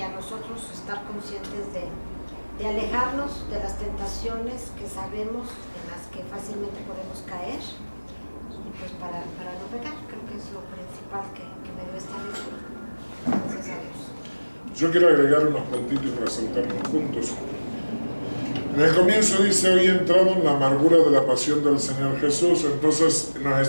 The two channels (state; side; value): inverted; both; correlation -1.00